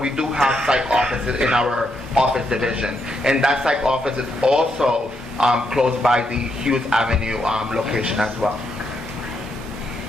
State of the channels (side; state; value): both; normal; correlation 0.79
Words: we do have psych offices in our office division. And that psych office is also close by the Hughes Avenue location as well.